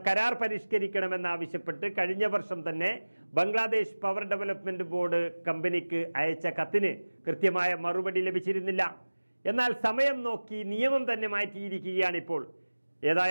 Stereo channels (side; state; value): both; inverted; correlation -1.00